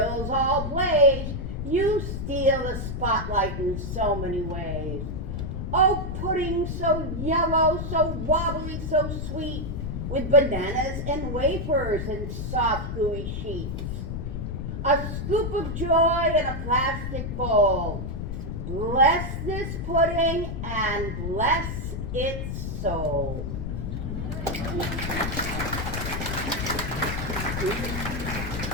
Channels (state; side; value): noise; left; rumble, 4 dB below the sound